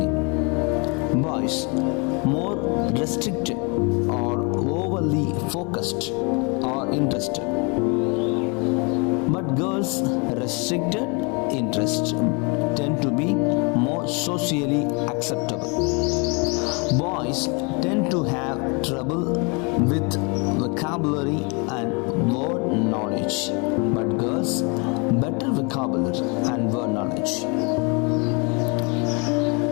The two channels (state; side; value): quieter; right; 32.0 dB